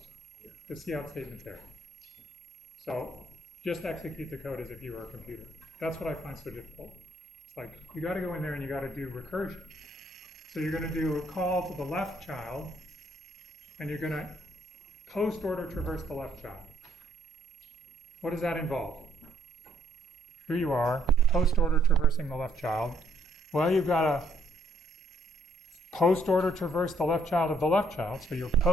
the cout statement there. So just execute the code as if you were a computer. That's what I find so difficult. It's like you got to go in there and you got to do recursion. So you're going to do a call to the left child, and you're going to post order traverse the left child. What does that involve? Here you are, post order traversing the left child. Well, you've got to post order traverse the left child of the left child, so you're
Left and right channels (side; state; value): both; normal; correlation 0.68